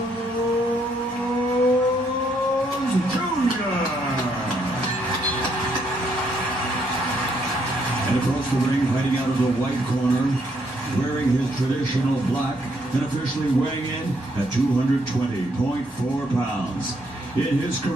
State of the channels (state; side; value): normal; both; correlation 0.72